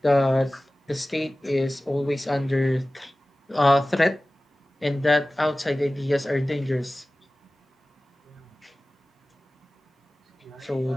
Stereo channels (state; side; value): normal; both; correlation 0.97